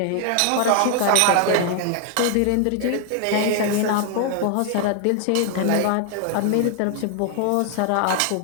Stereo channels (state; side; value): different; both; correlation 0.00